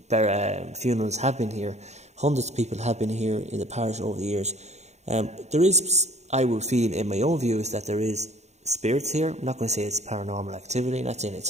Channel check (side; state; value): left; late; 0.33 ms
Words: funerals have been here. Hundreds of people have been here in the parish over the years. There is, I would feel in my own views, that there is spirits here. I'm not going to say it's paranormal activity, not saying it's